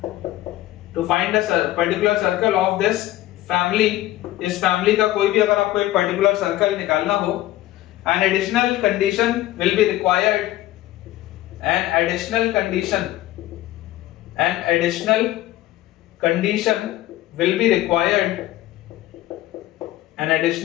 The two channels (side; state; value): right; quieter; 15.4 dB